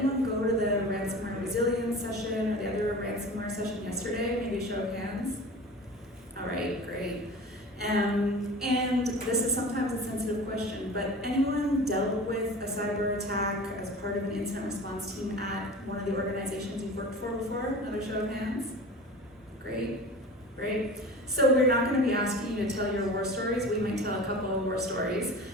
go to the ransomware resilience session or the other ransomware session yesterday? Maybe show of hands. All right, great. And this is sometimes a sensitive question, but anyone dealt with a cyber attack as part of an incident response team at one of the organizations you've worked for before? Another show of hands. Great. Great. So we're not going to be asking you to tell your war stories. We might tell a couple of war stories.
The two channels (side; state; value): both; normal; correlation 0.37